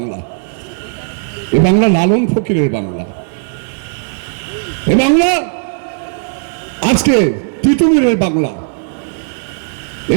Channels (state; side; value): silent; left; digital silence